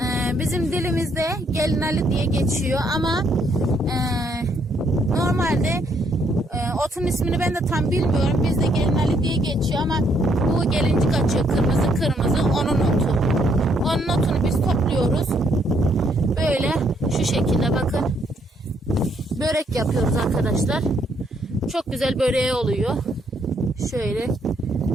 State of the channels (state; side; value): normal; both; correlation 0.71